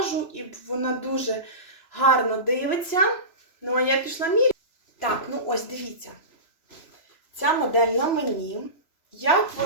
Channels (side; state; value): right; late; 3.0 ms